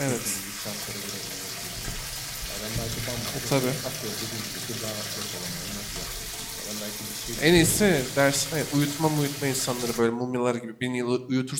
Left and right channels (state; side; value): identical; both; correlation 1.00